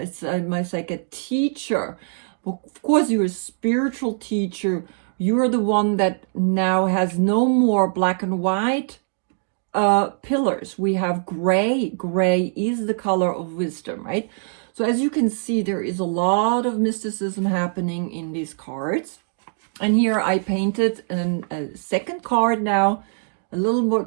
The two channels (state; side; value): silent; left; digital silence